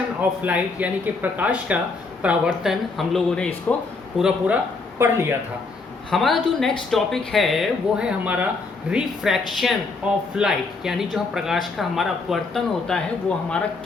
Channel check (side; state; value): right; quieter; 4.1 dB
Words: of light यानी कि प्रकाश का परावर्तन हम लोगों ने इसको पूरा पढ़ लिया था। हमारा जो नेक्स्ट टॉपिक है वो है हमारा रिफ्रैक्शन ऑफ लाइट, यानी जो प्रकाश का हमारा अपवर्तन होता है वो हमारा